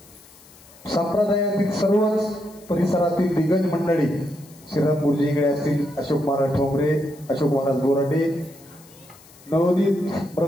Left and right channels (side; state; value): left; noise; hiss, 24 dB below the sound